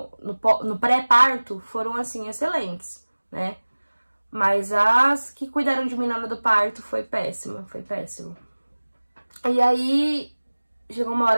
pré-parto, foram, assim, excelentes, né? Mas as que cuidaram de mim na hora do parto foi péssimo, foi péssimo. E aí, chegou uma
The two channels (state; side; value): inverted; both; correlation -1.00